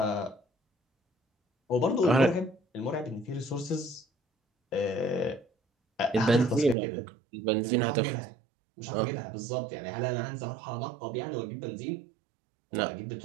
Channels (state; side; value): drops out; left; at 6.8 s